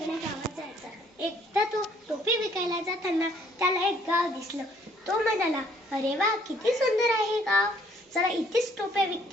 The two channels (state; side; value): normal; both; correlation 0.63